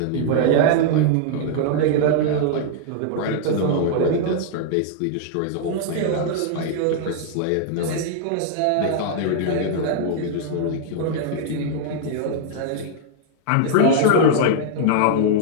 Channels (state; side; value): different; both; correlation -0.01